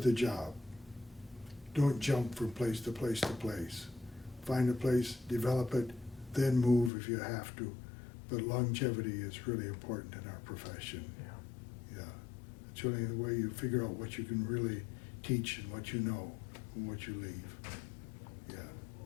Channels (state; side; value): drops out; right; at 6.9 s